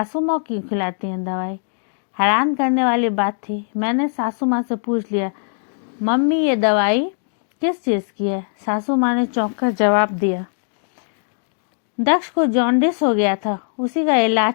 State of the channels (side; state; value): right; silent; digital silence